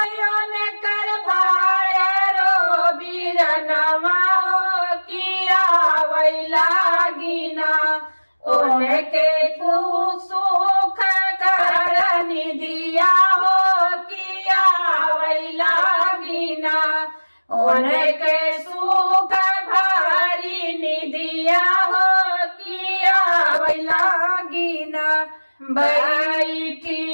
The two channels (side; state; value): both; inverted; correlation -1.00